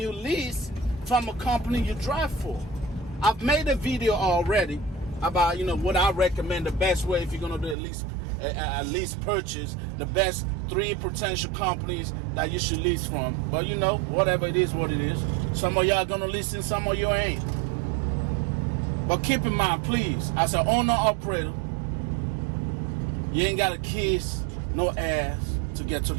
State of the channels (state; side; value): drops out; left; at 7.8 s